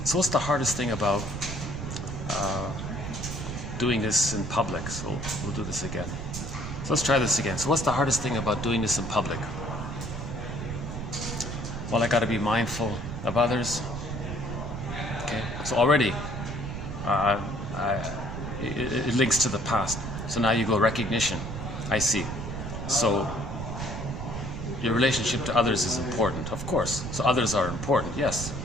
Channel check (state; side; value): noise; right; rumble, 6 dB below the sound